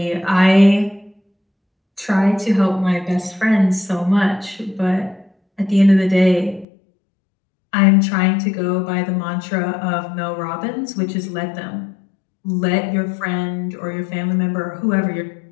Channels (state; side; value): drops out; right; at 6.7 s